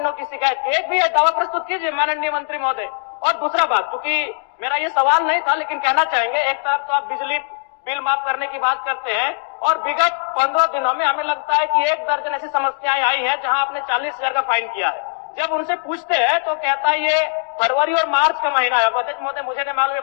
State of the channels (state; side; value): silent; right; digital silence